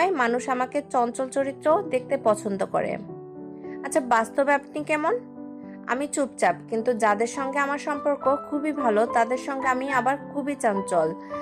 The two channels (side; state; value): both; identical; correlation 1.00